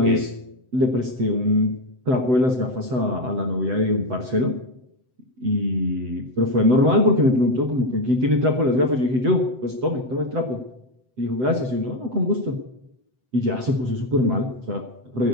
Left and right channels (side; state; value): left; late; 7.8 ms